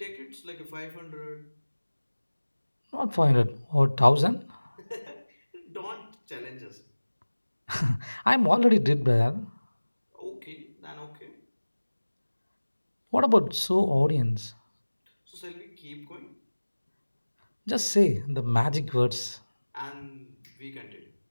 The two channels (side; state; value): both; inverted; correlation -1.00